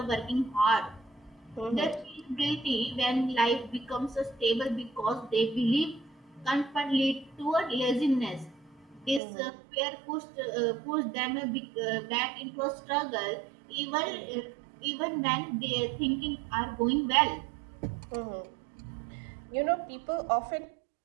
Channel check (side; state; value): left; drops out; at 9.2 s